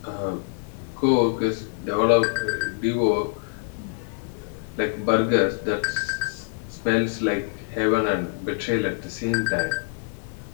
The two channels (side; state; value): right; silent; digital silence